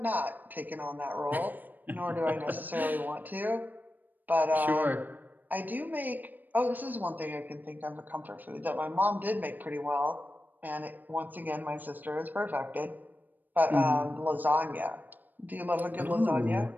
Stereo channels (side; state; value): left; late; 0.087 ms